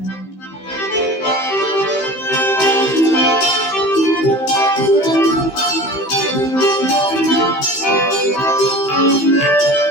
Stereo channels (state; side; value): late; right; 15 ms